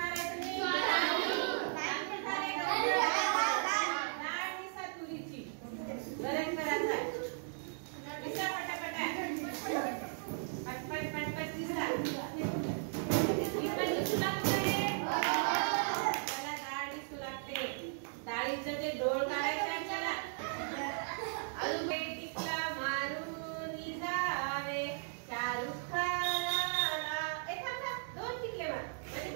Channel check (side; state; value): left; silent; digital silence